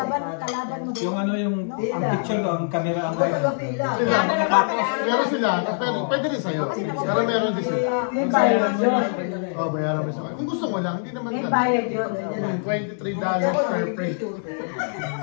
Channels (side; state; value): right; silent; 59 dB below the other